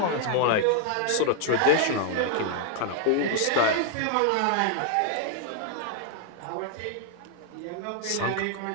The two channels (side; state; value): both; different; correlation 0.00